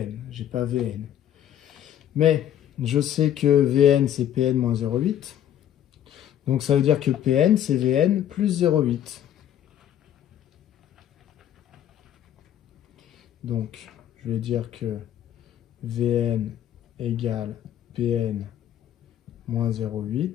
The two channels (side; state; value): right; quieter; 10.8 dB